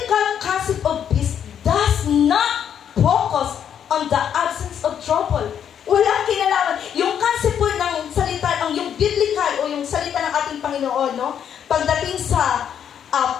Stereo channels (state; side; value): quieter; right; 8.8 dB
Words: concept of peace does not focus on the absence of trouble. Walang kinalaman. Yung concept po ng salita, yung biblical o yung salita ng ating Panginoon, no? Pagdating sa